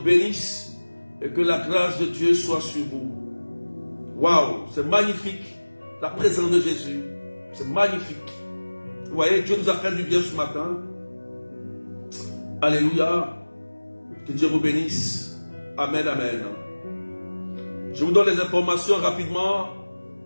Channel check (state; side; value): inverted; both; correlation -1.00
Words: bénisse. Et que la grâce de Dieu soit sur vous. Waouh, c'est magnifique. La présence de Jésus. C'est magnifique. Vous voyez, Dieu nous a fait du bien ce matin. Alléluia. Que Dieu vous bénisse. Amen, amen. Je vous donne les informations rapidement.